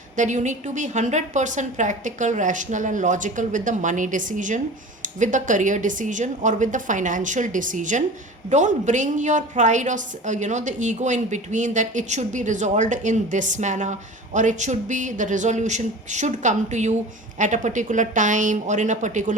that you need to be 100% practical, rational and logical with the money decision, with the career decision or with the financial decision. Don't bring your pride or the ego in between, that it should be resolved in this manner, or it should be, the resolution should come to you at a particular time or in a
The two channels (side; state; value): both; normal; correlation 0.37